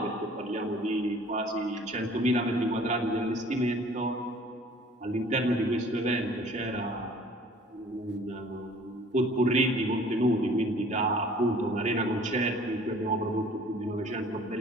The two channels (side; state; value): both; normal; correlation 0.52